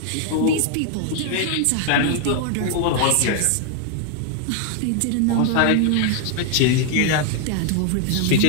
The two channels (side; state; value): both; different; correlation 0.00